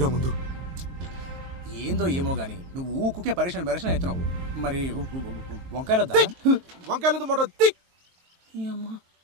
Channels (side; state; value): left; late; 23 ms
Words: ముందు. ఏందో ఏమో గాని నువ్వు ఊకుకే పరేషాన్ అవుతున్నావు. మరి వంకాయలు వంకాయలు మొట్ట